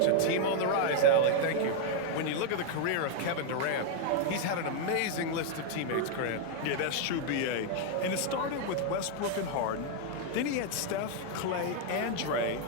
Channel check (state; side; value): different; both; correlation 0.00